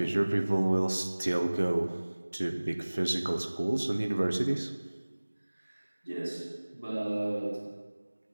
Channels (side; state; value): both; inverted; correlation -1.00